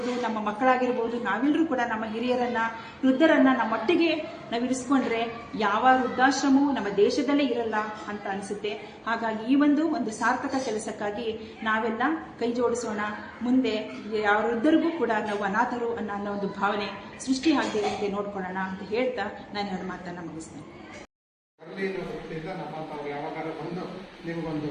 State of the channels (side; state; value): both; identical; correlation 1.00